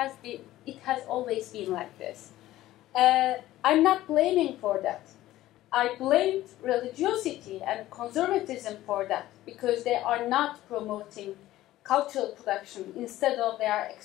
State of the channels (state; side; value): quieter; right; 15.2 dB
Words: has always been like this. I'm not blaming for that. I blamed religiosity and conservatism for that because they are not promoting cultural production. Instead of they are